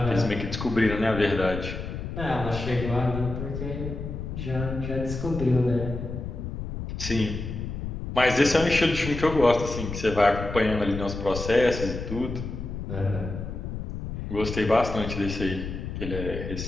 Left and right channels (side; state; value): left; noise; rumble, 6 dB below the sound